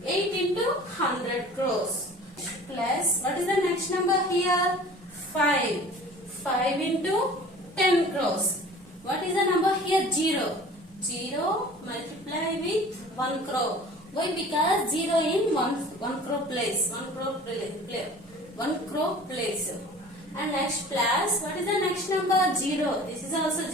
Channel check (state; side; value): normal; both; correlation 0.45